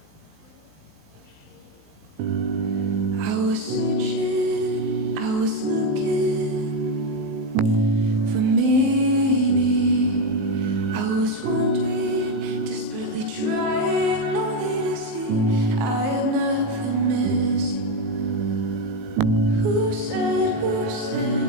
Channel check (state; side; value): late; left; 19 ms